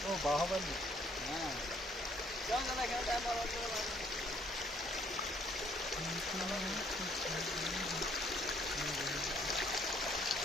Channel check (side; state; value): both; normal; correlation 0.65